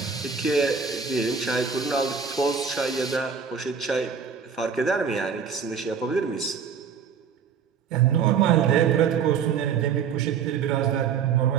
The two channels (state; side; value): quieter; left; 6.7 dB